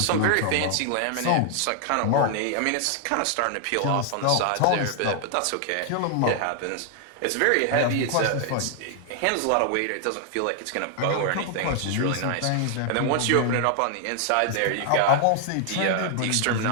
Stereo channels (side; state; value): both; different; correlation 0.00